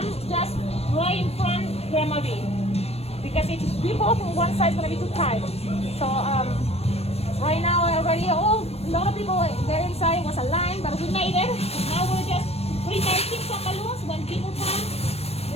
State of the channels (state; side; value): late; right; 0.30 ms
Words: just right in front of Grandma B, because if we both on one side, it's gonna be too tight. So right now already, a lot of people there inside. Was a line, but we made it. Now we're just pre-making some balloons. When people come,